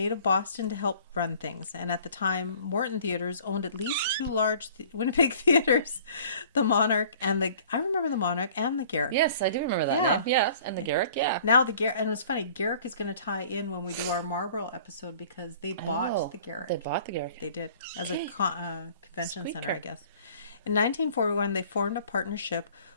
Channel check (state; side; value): inverted; both; correlation -0.51